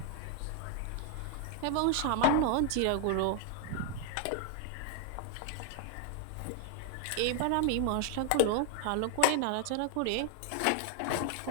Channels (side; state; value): both; different; correlation 0.00